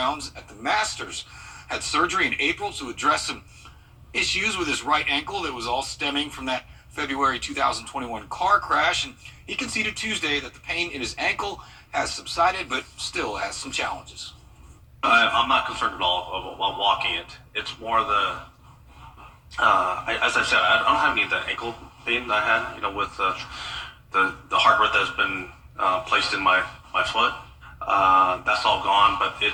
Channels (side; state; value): both; identical; correlation 1.00